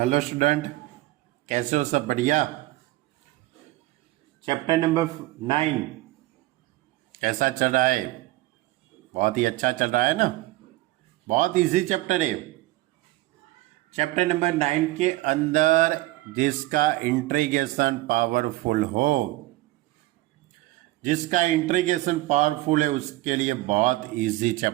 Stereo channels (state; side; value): quieter; left; 18.1 dB